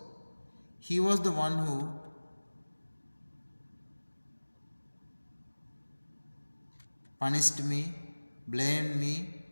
he was the one who punished me, blamed me,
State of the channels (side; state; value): both; inverted; correlation -1.00